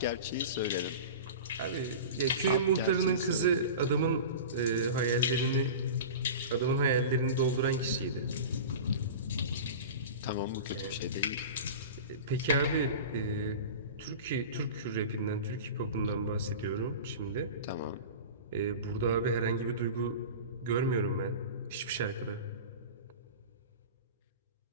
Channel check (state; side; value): inverted; both; correlation -0.32